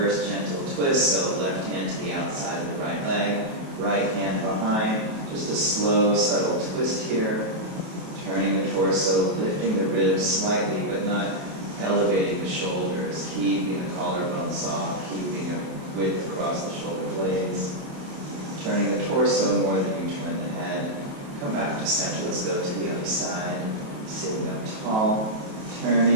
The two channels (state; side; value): late; left; 28 ms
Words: gentle twist. So left hand to the outside of the right leg, right hand behind. Just a slow, subtle twist here. Turning the torso, lifting the ribs slightly, but not elevating the shoulders. Keeping the collarbone soft, keeping a width across the shoulder blades. Turning the torso more than you turn the head. Come back to center. Let's go to the other side. Sitting up tall.